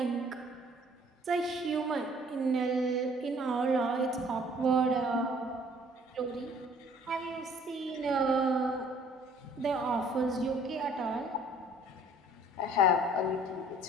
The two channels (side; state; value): both; normal; correlation 0.56